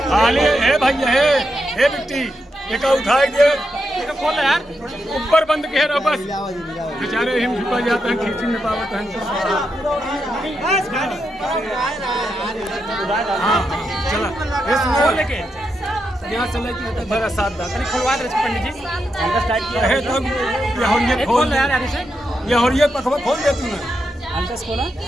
भैया है बिट्टी एक उठाए दे खोल यार, ऊपर बंद के रहो बस। बेचारे हिम झुका जाते हैं, खींची में पावत हैं। हाँ चला इसमें लेके यहाँ से लेके बड़ा साथ दा खुलवा दे पंडित जी। है तब ये खोल यार, ये और ये पखवा खोल दे तू ना। अंतस खोला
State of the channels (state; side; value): normal; both; correlation 0.84